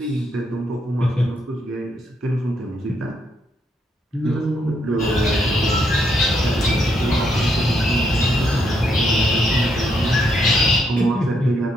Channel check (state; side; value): normal; both; correlation 0.76